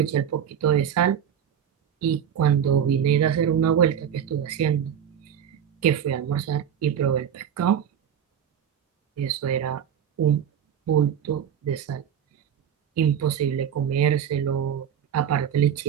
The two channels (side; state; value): left; quieter; 8.8 dB